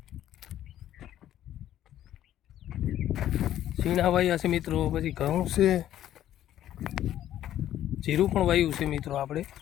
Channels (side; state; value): right; quieter; 12.1 dB